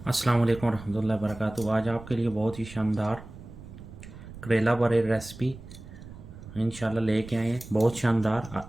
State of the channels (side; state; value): right; noise; rumble, 15 dB below the sound